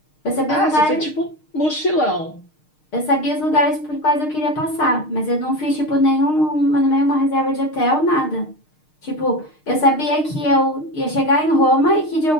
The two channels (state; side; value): late; right; 6.5 ms